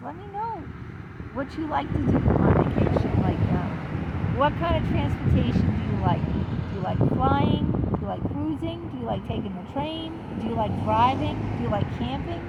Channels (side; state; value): both; identical; correlation 1.00